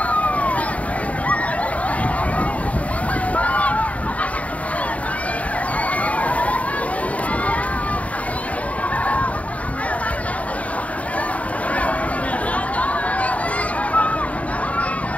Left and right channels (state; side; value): late; right; 0.068 ms